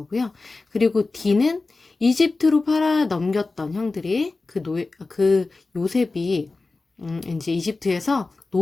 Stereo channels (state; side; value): quieter; right; 3.6 dB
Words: 그리고 D는 이집트로 팔아 넘겼던 형들이 그 요셉이 이제 이집트에서